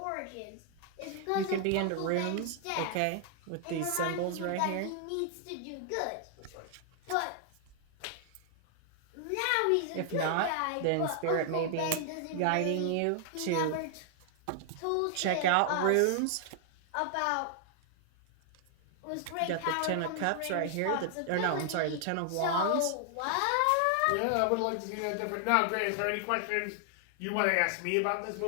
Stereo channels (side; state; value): both; different; correlation 0.00